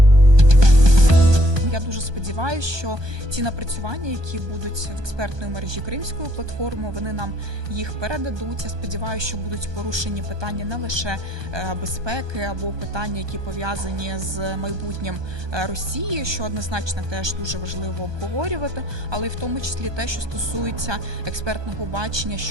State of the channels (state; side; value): late; left; 1.2 ms